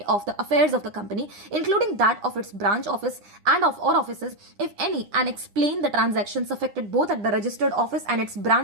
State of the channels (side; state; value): left; late; 9.9 ms